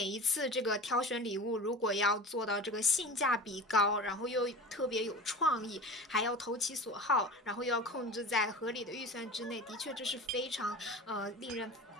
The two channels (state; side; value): normal; both; correlation 0.34